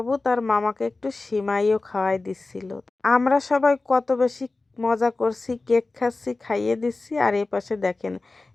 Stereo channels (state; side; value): quieter; right; 3.4 dB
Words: তার মামাকে একটু সিমাইও খাওয়াই দিচ্ছিল। আমরা সবাই কত বেশি মজা করছি, কেক খাচ্ছি, খাইয়ে দিচ্ছি, আর এ পাশে দেখেন